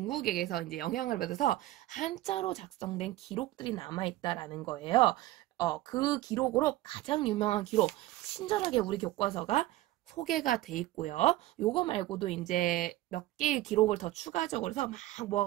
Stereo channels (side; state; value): left; quieter; 16.5 dB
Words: 이제 영향을 받아서 한자로 작성된 기록들이 남아있다라는 거예요. 그 기록으로 가장 유명한 기록, 친절하게 우리 교과서가 소개가 돼 있고요. 요거 말고도 이제 몇 개의 기록을 더 추가적으로 해서 막